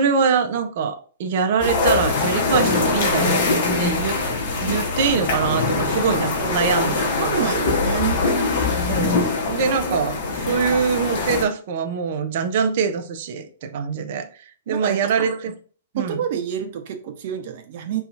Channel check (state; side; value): inverted; both; correlation -0.39